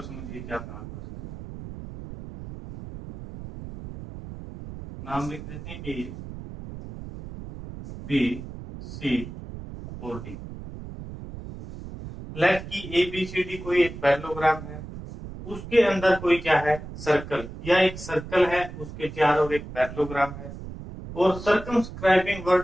समझिए क्या कहा क्वेश्चन में। नाम लिख देते हैं ए बी सी और डी। लेट की ए बी सी डी कोई एक पैरेललोग्राम है, उसके अंदर कोई क्या है सर्कल, या एक सर्कल है उसके चारों एक पैरेललोग्राम है, और सर्कमस्क्राइबिंग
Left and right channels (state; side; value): noise; right; rumble, 11 dB below the sound